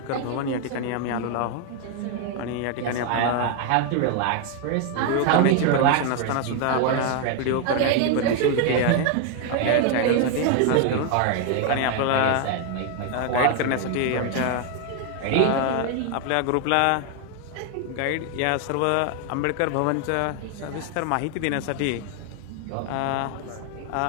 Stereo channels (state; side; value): different; both; correlation 0.00